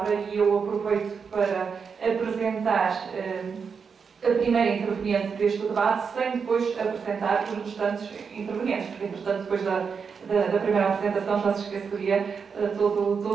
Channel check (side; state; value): left; quieter; 5.9 dB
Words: e eu aproveito para apresentar a primeira interveniente deste debate, sem depois apresentar os restantes intervenientes, porque, entretanto, depois da primeira apresentação já se esqueceria